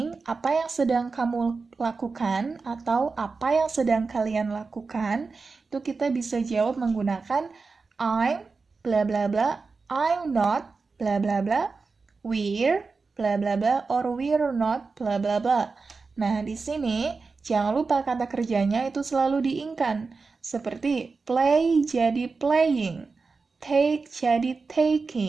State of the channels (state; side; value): quieter; left; 4.4 dB